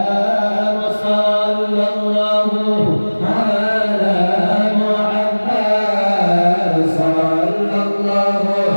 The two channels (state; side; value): inverted; both; correlation -1.00